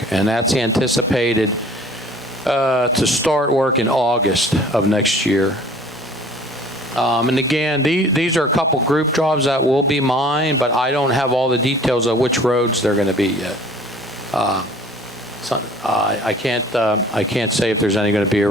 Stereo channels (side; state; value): both; normal; correlation 0.49